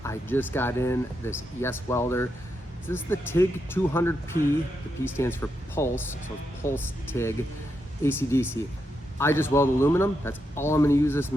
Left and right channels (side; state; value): both; normal; correlation 0.83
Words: I just got in this YesWelder. This is the TIG200P. The P stands for Pulse, so it's Pulse TIG ACDC. I just weld aluminum. That's all I'm going to use this